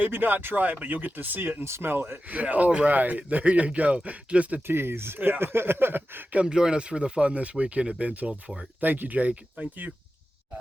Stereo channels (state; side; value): normal; both; correlation 0.93